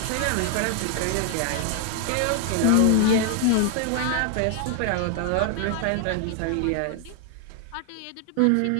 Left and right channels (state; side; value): different; both; correlation 0.00